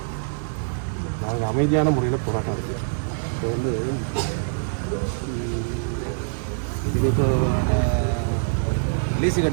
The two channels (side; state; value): left; silent; 62 dB below the other